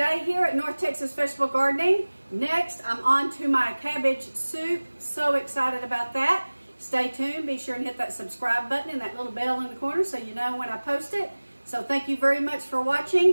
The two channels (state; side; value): inverted; both; correlation -1.00